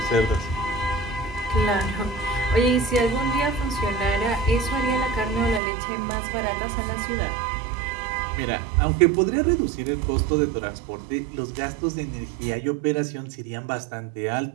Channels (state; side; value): drops out; left; at 5.6 s